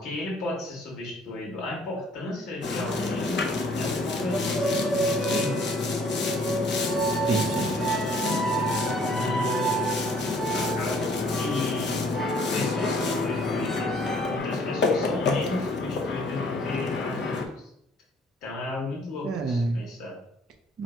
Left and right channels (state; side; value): normal; both; correlation 0.59